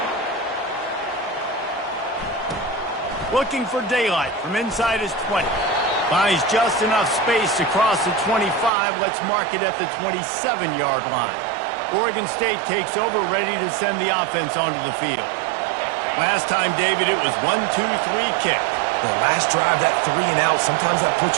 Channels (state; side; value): drops out; left; at 8.7 s